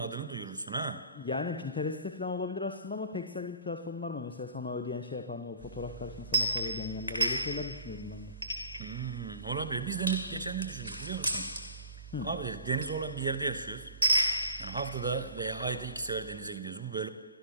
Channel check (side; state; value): both; inverted; correlation -0.44